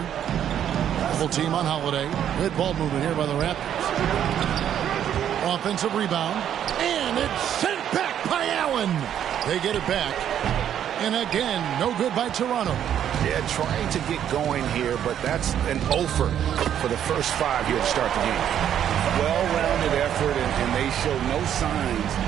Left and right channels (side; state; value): left; quieter; 9.9 dB